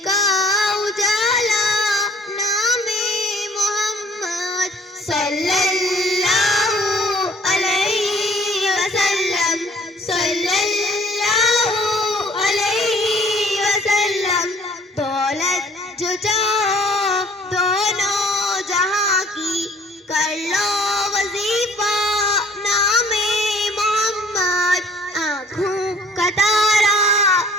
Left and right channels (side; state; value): both; normal; correlation 0.56